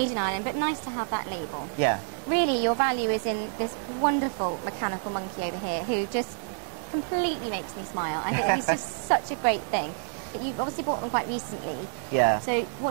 in Ireland, but nice to have that label. Yeah. Really, your value is in this wonderful mechanical monkey over here, who just completely makes me smile. I think he's just such a great thing. But you've obviously bought them quite recently. Yeah. So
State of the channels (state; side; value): silent; left; digital silence